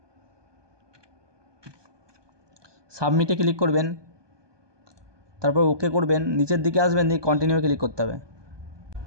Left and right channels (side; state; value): left; late; 1.2 ms